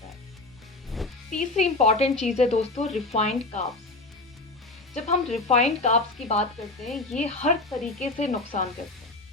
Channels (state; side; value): quieter; right; 3.0 dB